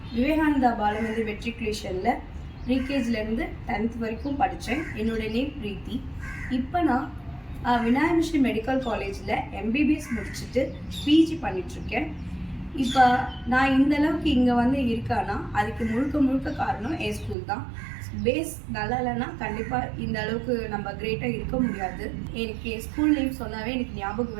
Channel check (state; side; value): drops out; left; at 17.4 s